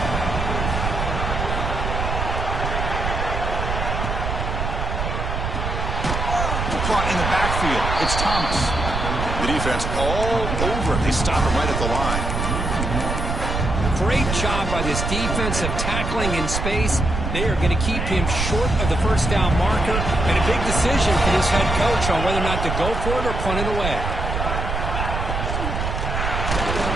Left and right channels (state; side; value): noise; right; rumble, 2 dB below the sound